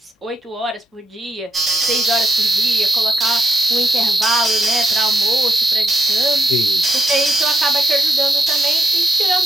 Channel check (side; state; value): both; normal; correlation 0.80